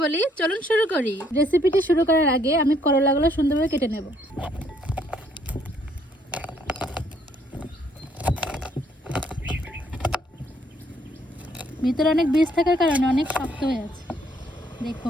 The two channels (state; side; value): normal; both; correlation 0.67